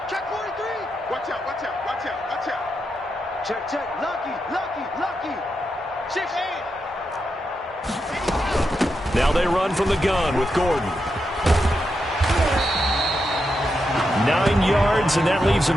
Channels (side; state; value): both; normal; correlation 0.85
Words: 43. Watch out. Check. Lucky. 6 Now they run from the gun with Gordon. 9 yards, and that leaves